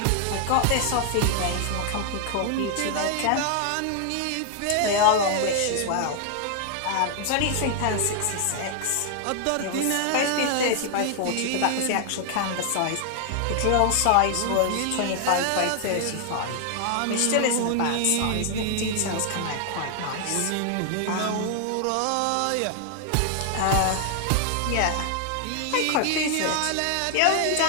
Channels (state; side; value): different; both; correlation 0.00